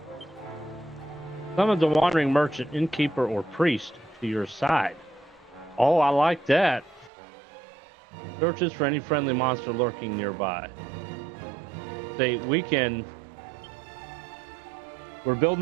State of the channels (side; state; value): left; drops out; at 7.1 s